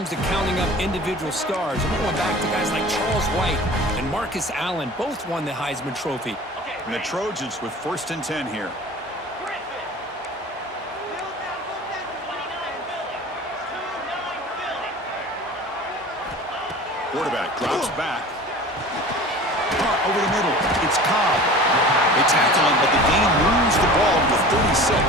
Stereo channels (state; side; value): normal; both; correlation 0.40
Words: to counting up individual stars. And we're going back to guys like Charles White and Marcus Allen. Both won the Heisman Trophy. And the Trojans with 1st and 10 here. Quarterback drops back. Caught over the middle. It's Cobb. They tackle him, but the game moves the ball to 36.